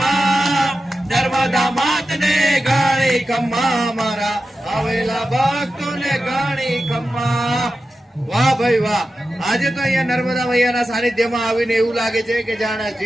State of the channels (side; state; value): both; normal; correlation 0.92